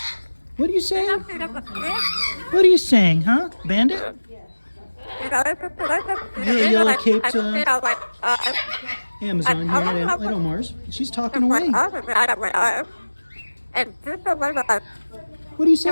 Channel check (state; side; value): inverted; both; correlation -1.00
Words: What are you saying? What are you saying, huh? Bandit? The yellow-caped Amazon here at Omar's. She's talking away. What are you